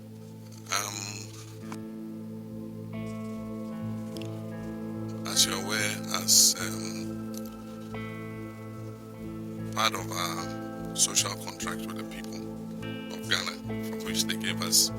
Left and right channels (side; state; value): both; identical; correlation 1.00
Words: As you're aware, as part of our social contract with the people of Ghana, for which they gave us